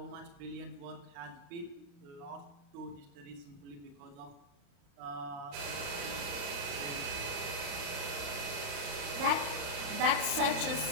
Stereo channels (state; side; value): late; left; 35 ms